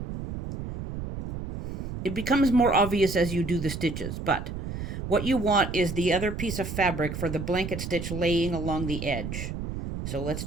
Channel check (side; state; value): right; noise; rumble, 6 dB below the sound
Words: It becomes more obvious as you do the stitches, but what you want is the other piece of fabric for the blanket stitch laying along the edge. So let's